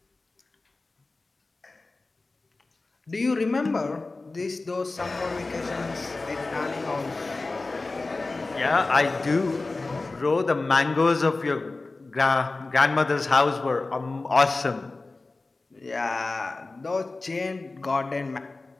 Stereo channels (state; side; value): quieter; right; 3.4 dB